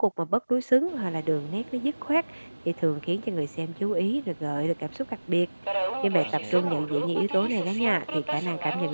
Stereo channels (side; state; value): both; inverted; correlation -1.00